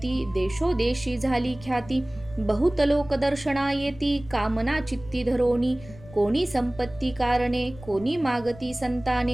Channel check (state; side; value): noise; left; rumble, 19 dB below the sound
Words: देशोदेशी झाली ख्याती. बहुत लोक दर्शना येती, कामना चित्ती धरोनी. कोणी संपत्ती कारणे, कोणी मागती